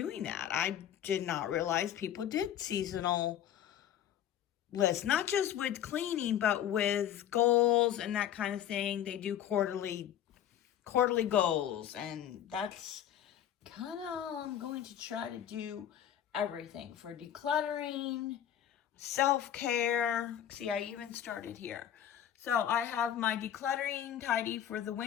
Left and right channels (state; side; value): quieter; right; 10.5 dB